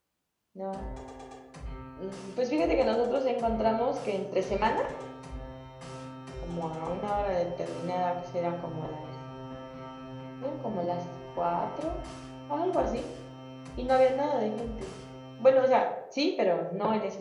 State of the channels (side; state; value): both; identical; correlation 1.00